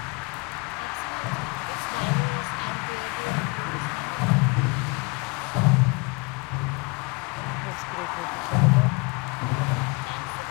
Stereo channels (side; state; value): right; quieter; 29.2 dB